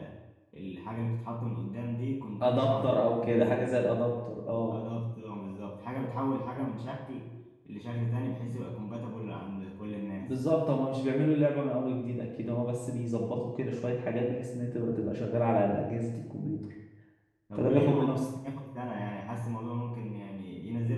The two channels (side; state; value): both; identical; correlation 1.00